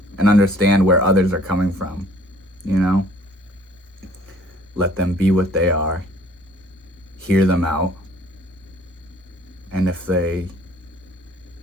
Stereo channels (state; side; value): normal; both; correlation 0.56